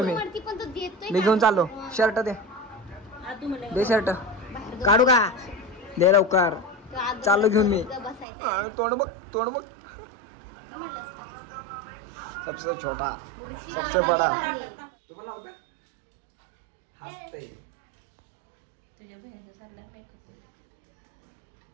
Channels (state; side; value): drops out; left; at 8.2 s